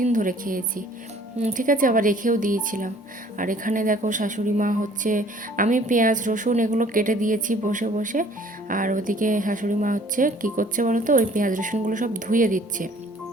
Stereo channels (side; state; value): both; normal; correlation 0.55